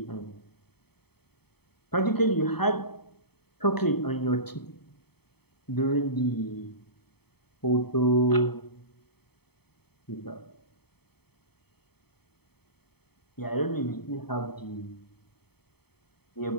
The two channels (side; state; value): right; late; 0.97 ms